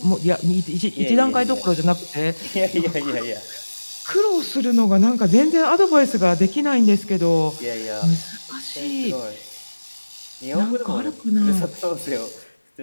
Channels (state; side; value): inverted; both; correlation -1.00